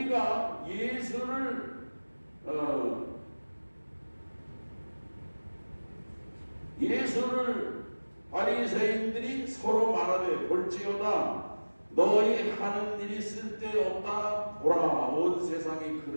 예수를 바리새인들이 서로 말하되, 볼지어다 너희 하는 일이 쓸데없다. 보라, 온 세상이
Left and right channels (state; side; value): inverted; both; correlation -1.00